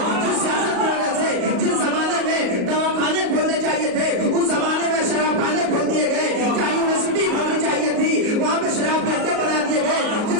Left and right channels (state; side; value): late; left; 38 ms